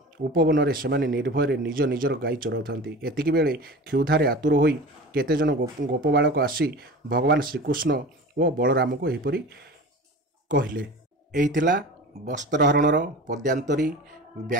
ଉପବନରେ ସେମାନେ ନିର୍ଭୟରେ ନିଜ ନିଜର ଗାଈ ଚରାଉଥାନ୍ତି। ଏତିକିବେଳେ କ୍ଷୁଧାରେ ଆତୁର ହୋଇ କେତେଜଣ ଗୋପବାଳକ ଆସି ଭଗବାନ ଶ୍ରୀକୃଷ୍ଣ ଓ ବଳରାମଙ୍କୁ ଏହିପରି କହିଲେ। ଏହି ଥିଲା ବସ୍ତ୍ରହରଣର ପଦ୍ୟାନ୍ତରୀ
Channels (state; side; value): normal; both; correlation 0.35